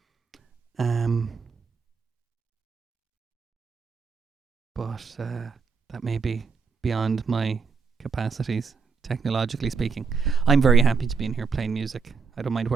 But that may be beyond my capacities, technologically speaking. I'm very happy to be in here playing music. I don't mind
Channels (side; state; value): left; quieter; 5.1 dB